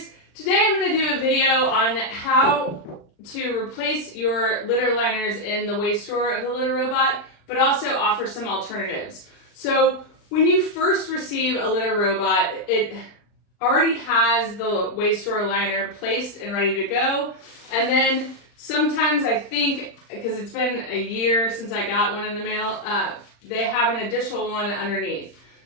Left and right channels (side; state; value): right; late; 39 ms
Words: Today I'm going to do a video on how to replace your litter liners in the waste drawer of the LitterRobot, but also offer some alternatives. So when you first receive a LitterRobot, it already has the waste drawer liner placed and ready to go. And then sometimes I think, because it's been a year since I got one in the mail, they have an additional one underneath.